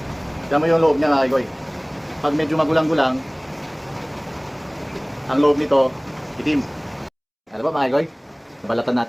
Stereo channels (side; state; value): both; identical; correlation 1.00